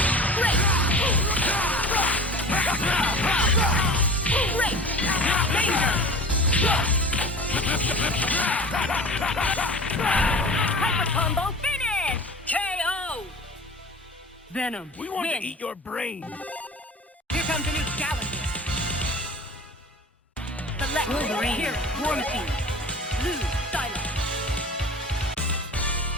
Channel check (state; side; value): normal; both; correlation 0.39